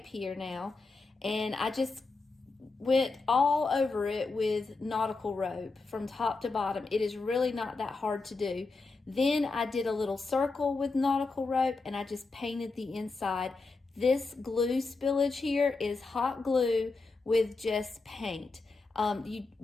here now. And I just went all over it with nautical rope from top to bottom. It is really not that hard to do. Then I did a little circle with nautical rope and I just painted the inside. This glue spillage here is hot glue with just paint. You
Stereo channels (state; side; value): quieter; right; 3.8 dB